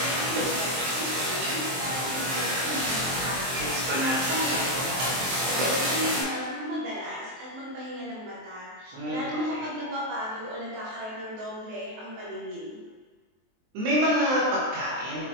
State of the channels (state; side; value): late; left; 23 ms